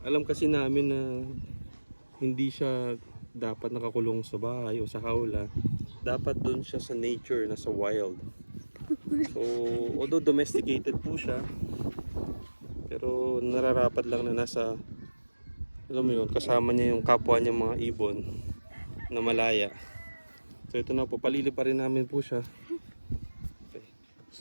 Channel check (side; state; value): both; inverted; correlation -1.00